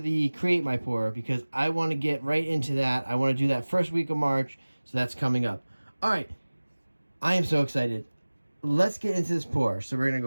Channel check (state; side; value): inverted; both; correlation -1.00